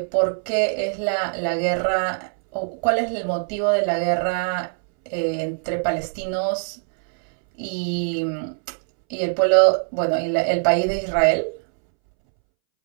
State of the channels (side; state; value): left; silent; 64 dB below the other